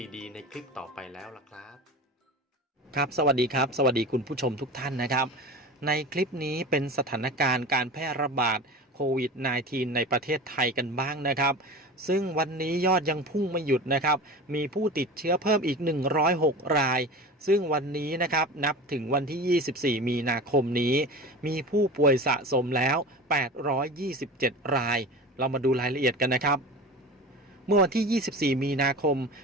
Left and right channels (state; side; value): normal; both; correlation 0.33